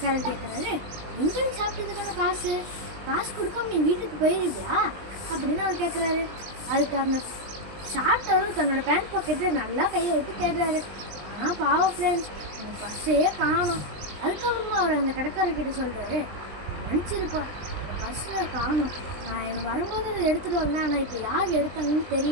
கேட்குறாரு, எங்கேயும் சாப்பிட்டதுக்கான காசு கொடுக்காம நீ வீட்டுக்கு போயிருவியா அப்படின்னு அவர் கேட்குறாரு. அதுக்கு அந்த சாப்பிட்டவரும் தன்னோட பேண்ட் பாக்கெட்டில் நல்லா கையை விட்டு தேடுறாரு. ஆனால் பாவம் ஃப்ரெண்ட்ஸ், அந்த பர்ஸையே காணும். அதுக்கப்புறமா அவர் அந்த கடைக்காரர்கிட்ட சொல்கிறாரு, மன்னிச்சிருப்போம், அந்த பர்ஸில் காணும். நான் எனக்கு வரும்போது அதை எடுத்துகிட்டு வந்தேன், ஆனால் இப்போ யார் எடுத்தாங்கன்னு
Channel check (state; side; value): late; left; 20 ms